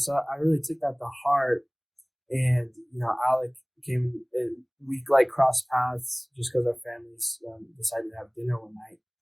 I really took that to heart. And, Alec came, we like crossed paths just because our families decided to have dinner one night.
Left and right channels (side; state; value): both; identical; correlation 1.00